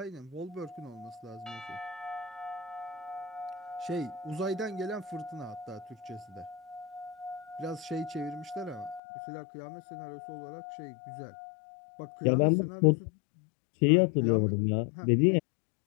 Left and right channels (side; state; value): right; drops out; at 9.0 s